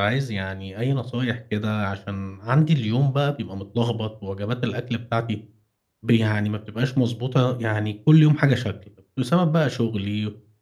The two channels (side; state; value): both; identical; correlation 1.00